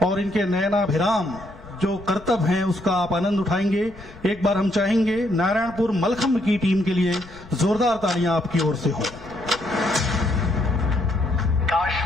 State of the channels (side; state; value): left; noise; rumble, 20 dB below the sound